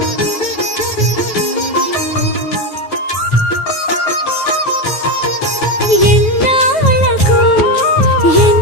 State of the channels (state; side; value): late; right; 9.3 ms